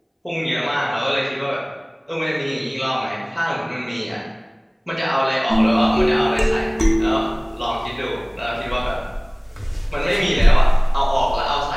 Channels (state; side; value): identical; both; correlation 1.00